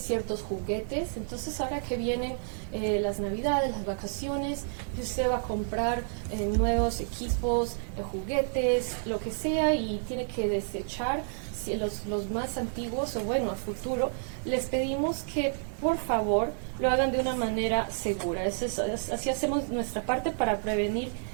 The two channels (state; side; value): silent; left; 58 dB below the other